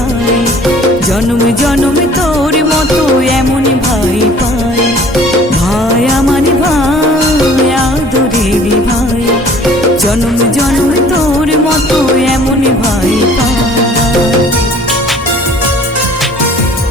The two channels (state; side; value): normal; both; correlation 0.51